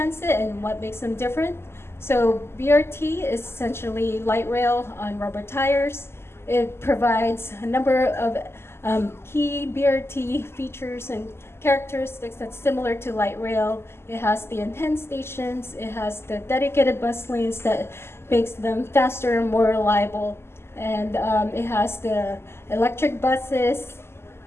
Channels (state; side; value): late; right; 0.12 ms